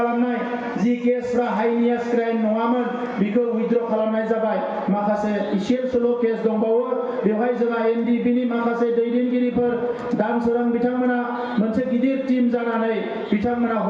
जि केसफ्रा हाइनियास क्राइम नङामोन बेखौ उइथड्र खालामनाय जाबाय। माखासे इसेल' केस दंबावो, बेवहाय जोंहा NDP-नि माखासे दैदेनगिरिफोर दानसोरां बिथांमोना मोनसे गिदिर टीम जानानै बिथांमोना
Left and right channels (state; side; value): identical; both; correlation 1.00